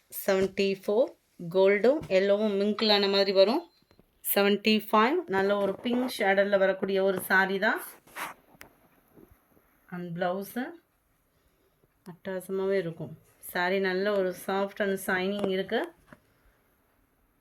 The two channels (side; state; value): both; identical; correlation 1.00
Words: 74 கோல்டும் எல்லோவும் மிங்கிளான மாதிரி வரும். 75 நல்ல ஒரு பிங்க் ஷேடரில் வரக்கூடிய ஒரு சாரீ தான். அண்ட் ப்ளவுஸு அட்டகாசமாகவே இருக்கும். சாரீ நல்ல ஒரு சாஃப்ட் அண்ட் ஷைனிங் இருக்குது.